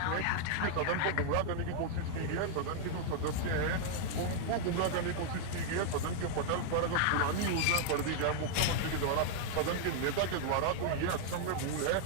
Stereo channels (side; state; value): both; different; correlation -0.01